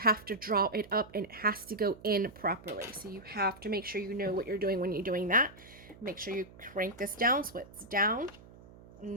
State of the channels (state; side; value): noise; right; hum, 21 dB below the sound